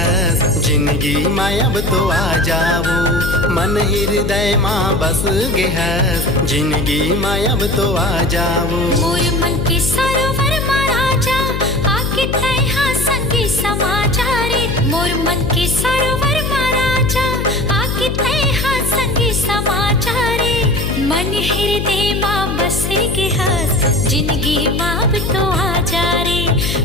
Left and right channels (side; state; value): left; noise; hum, 2 dB below the sound